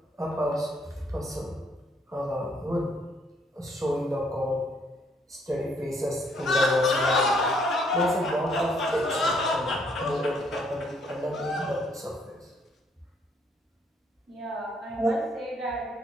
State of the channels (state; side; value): normal; both; correlation 0.67